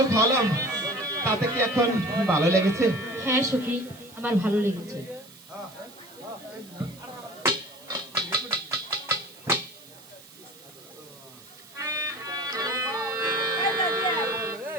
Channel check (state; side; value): noise; right; hiss, 21 dB below the sound